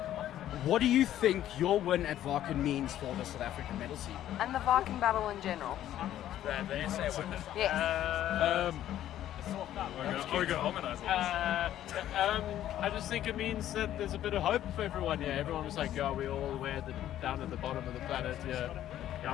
What do you think your win at WACKEN means for the South African metal scene? And the WACKEN battle in general. Yes. Are we going to harmonize on this? I just think it means that there's a bit of hope for everyone. Yeah, everyone was like, we're all down at the bottom of the planet.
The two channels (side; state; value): right; quieter; 12.2 dB